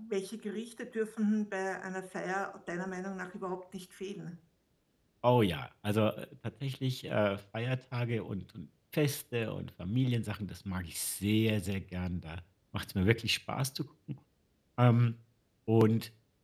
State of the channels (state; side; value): identical; both; correlation 1.00